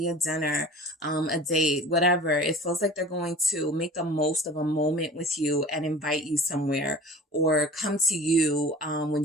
a dinner, a date, whatever. It feels like they're going to make the most of a moment with you and invite you somewhere, or come to you when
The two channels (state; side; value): normal; both; correlation 0.42